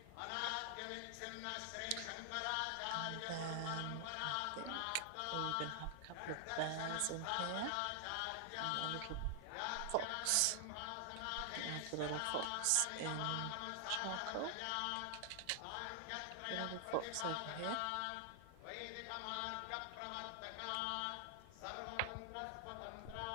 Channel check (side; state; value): both; different; correlation 0.00